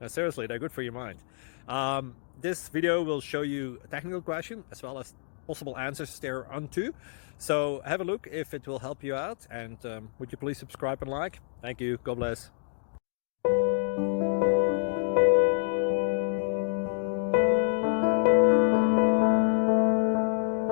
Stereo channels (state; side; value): silent; right; digital silence